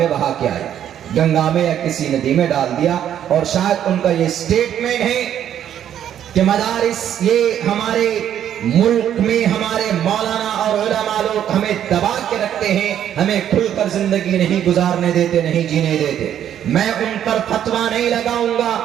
बहा के आए, गंगा में या किसी नदी में डाल दिया। और शायद उनका ये स्टेटमेंट है कि मदारिस, ये हमारे मुल्क में हमारे मौलाना और उलमा लोग हमें दबा के रखते हैं, हमें खुलकर जिंदगी नहीं गुजारने देते, नहीं जीने देते। मैं उन पर फतवा नहीं लगाऊंगा।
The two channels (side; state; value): left; quieter; 10.2 dB